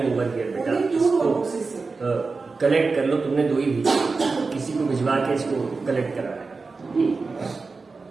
over here बेटा, इसको कलेक्ट कर लो। तुमने 2 ही भेजी, किसी को भिजवा के इसको कलेक्ट करा है।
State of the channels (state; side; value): quieter; left; 4.2 dB